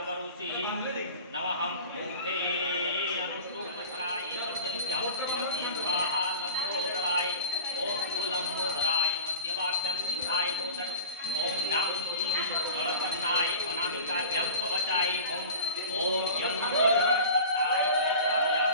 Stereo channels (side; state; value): both; inverted; correlation -0.37